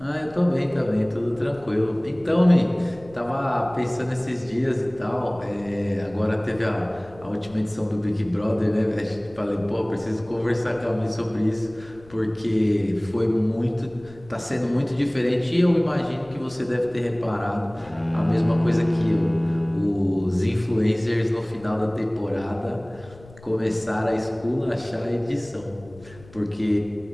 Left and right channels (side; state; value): left; noise; rumble, 22 dB below the sound